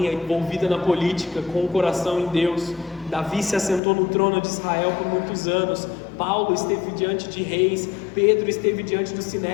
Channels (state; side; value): drops out; right; at 3.8 s